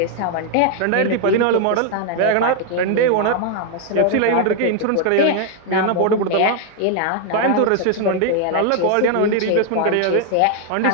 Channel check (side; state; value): both; different; correlation 0.00